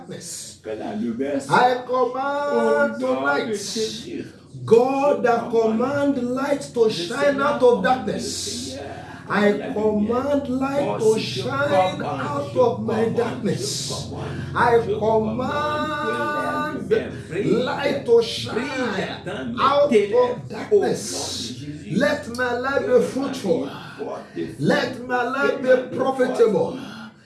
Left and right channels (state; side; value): identical; both; correlation 1.00